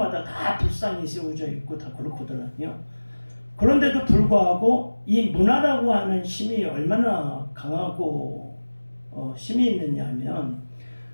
다 불상이 세워져 있고 다 그렇거든요. 그런데도 불구하고 이 문화라고 하는 힘이 얼마나 강하고 힘이 있느냐 하면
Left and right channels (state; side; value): inverted; both; correlation -1.00